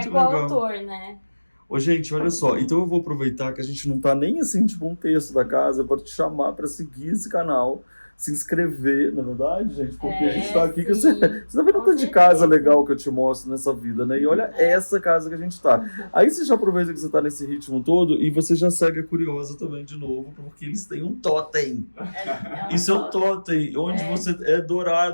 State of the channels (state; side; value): inverted; both; correlation -1.00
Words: é legal. coautor, né? Ô, gente, olha só. Então eu vou aproveitar que a gente não tá nem assim, tipo, um terço da casa para te chamar para seguir esse canal, se inscrever, na verdade, gente, porque a gente tá aqui que você tá vendo Com tanto de certeza. casa legal que eu te mostro nessa vida, né? E olha essa casa que a gente tá. Aí você já aproveita que você tá nesse ritmo todo e você já segue a Curiosa também de novo, porque eles têm um totem. Isso é um totem, onde você é